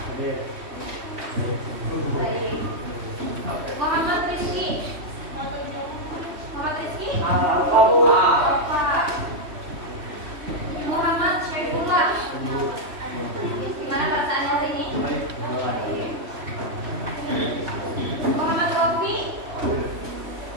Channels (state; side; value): late; left; 3.1 ms